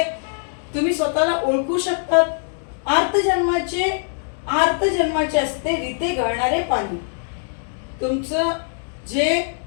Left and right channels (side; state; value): right; silent; digital silence